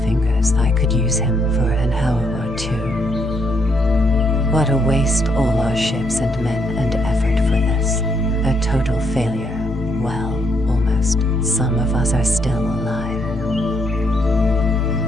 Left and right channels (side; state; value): both; normal; correlation 0.73